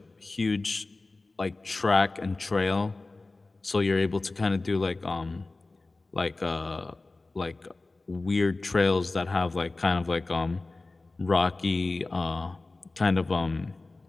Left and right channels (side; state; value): right; quieter; 3.3 dB